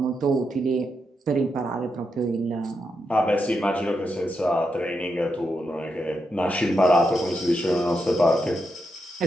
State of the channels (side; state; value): both; normal; correlation 0.84